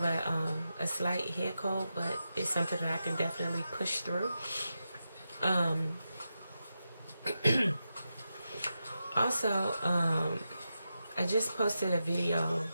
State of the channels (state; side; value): inverted; both; correlation -0.89